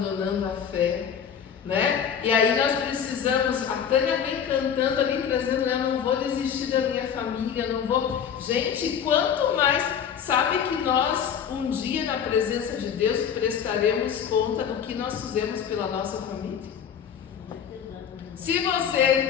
a fé, né? E aí nós precisamos, a Tânia vem cantando ali, trazendo, eu não vou desistir da minha família, não vou... Gente, quanto mais, sabe que nós um dia na presença de Deus prestaremos conta do que nós fizemos pela nossa família. Se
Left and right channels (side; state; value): right; quieter; 8.0 dB